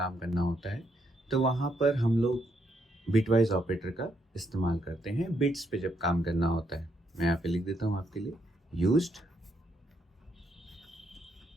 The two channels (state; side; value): normal; both; correlation 0.76